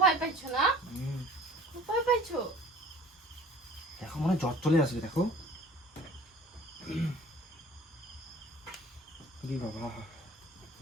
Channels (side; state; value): both; normal; correlation 0.48